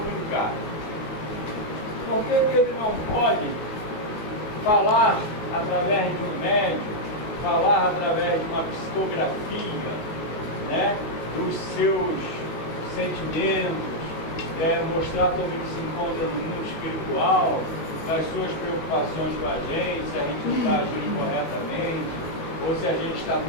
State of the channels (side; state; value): right; late; 19 ms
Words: Por que ele não pode falar através de um médium, falar através de uma psicografia, né, dos seus sentimentos, mostrar como ele se encontra no mundo espiritual, das suas preocupações com a gente, se a gente não está agindo corretamente, ou se a gente está